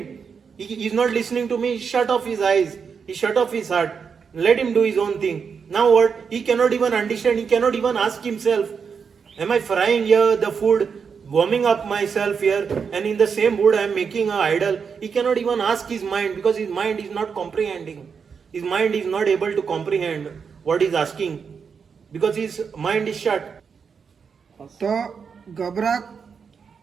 He's not listening to me. He shut off his eyes. He shut off his heart. Let him do his own thing. Now what? He cannot even understand. He cannot even ask himself, am I frying here the food, warming up myself here, and in the same wood I am making an idol? He cannot even ask his mind because his mind is not comprehending. His mind is not able to comprehend what he's asking because his mind is shut. तो गबराक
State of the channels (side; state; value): left; quieter; 6.1 dB